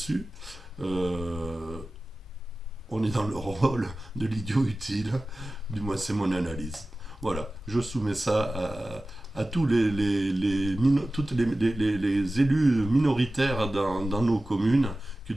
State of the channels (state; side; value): normal; both; correlation 0.96